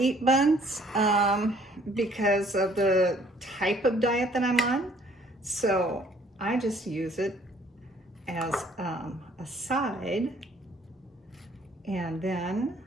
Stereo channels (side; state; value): both; normal; correlation 0.60